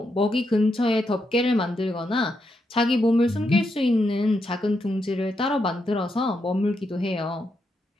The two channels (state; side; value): normal; both; correlation 0.82